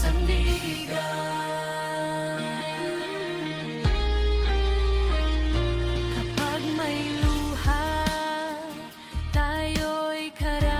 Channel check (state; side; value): identical; both; correlation 1.00